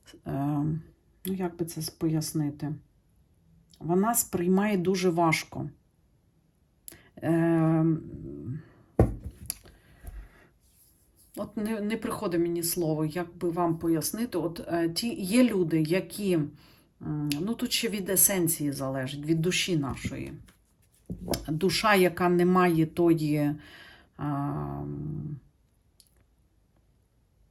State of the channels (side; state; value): both; identical; correlation 1.00